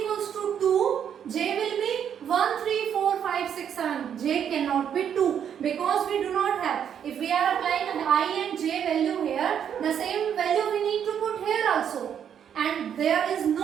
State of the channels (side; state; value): left; quieter; 8.7 dB